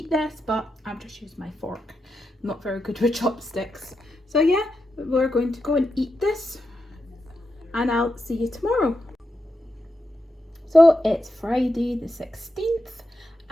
this, but I've just used my fork. I'm not very good with chopsticks. So yeah, we're going to go and eat this, and I'll see you tomorrow. So it's Friday the 16th,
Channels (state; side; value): normal; both; correlation 0.86